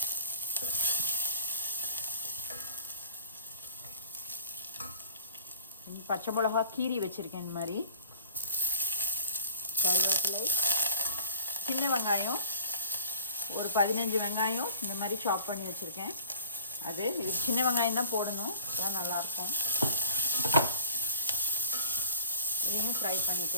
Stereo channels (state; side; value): inverted; both; correlation -0.52